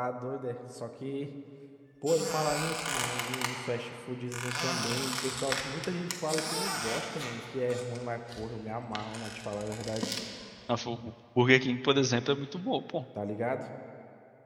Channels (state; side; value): identical; both; correlation 1.00